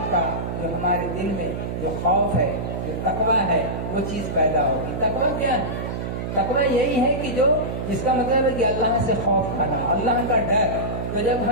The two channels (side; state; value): right; noise; hum, 4 dB below the sound